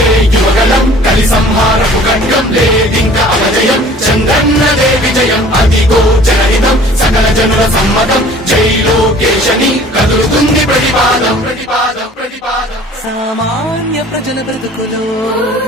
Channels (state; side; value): normal; both; correlation 0.49